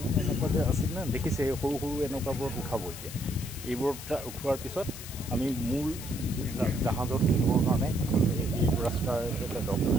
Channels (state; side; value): noise; left; hiss, 12 dB below the sound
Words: এনেকুৱা যে আছিল না দেখিছে সৰু সৰু এনেকুৱাবোৰত উঠাব এতিয়া এইবোৰত উঠোৱাৰ পিছত আমি মূল জাহাজত উঠিবৰ কাৰণে এইটো ৰাস্তাৰ এটা ডক